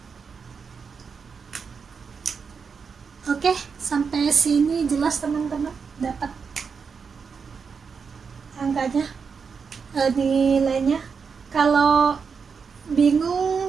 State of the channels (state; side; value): quieter; left; 5.8 dB